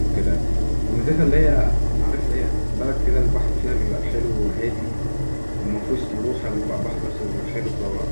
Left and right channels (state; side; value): inverted; both; correlation -1.00